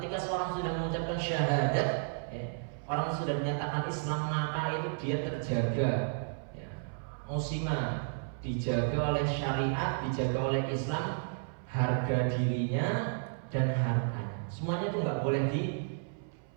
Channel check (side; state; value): left; silent; 56 dB below the other